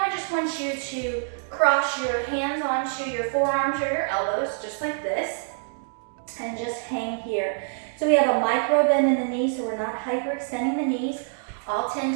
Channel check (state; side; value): silent; left; digital silence